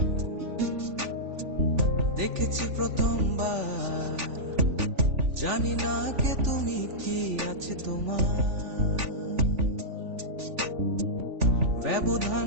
দেখেছি প্রথমবার, জানি না কে তুমি, কি আছে তোমার।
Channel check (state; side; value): late; left; 3.4 ms